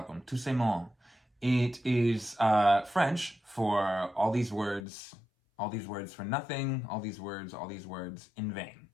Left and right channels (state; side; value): drops out; right; at 4.8 s